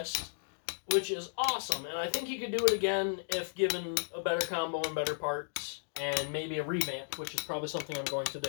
which is awesome, and I think he could do it again if given a better combo and better parts, and maybe a revamp, which is probably something I'm going to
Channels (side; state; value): right; silent; digital silence